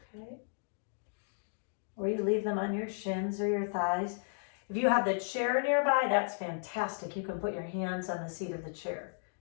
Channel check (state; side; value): silent; right; digital silence